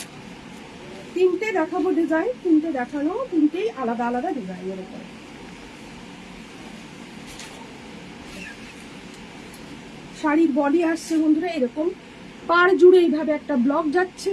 তিনটে দেখাবো ডিজাইন, তিনটে দেখানো, তিনটেই আলাদা আলাদা ডিজাইনের উপরে। শাড়ির বডি আসছে বন্ধুরা এরকম, পাড় জুড়ে এইভাবে একটা ব্লক যাচ্ছে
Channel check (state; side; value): identical; both; correlation 1.00